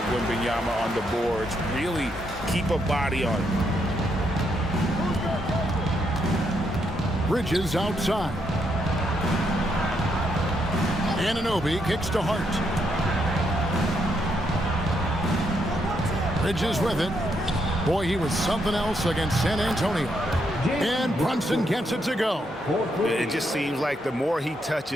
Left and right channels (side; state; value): both; normal; correlation 0.77